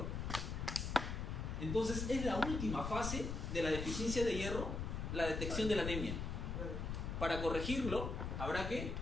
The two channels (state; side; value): noise; left; rumble, 3 dB below the sound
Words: Entonces es la última fase de la deficiencia de hierro, la detección de la anemia. Para corregirlo, habrá que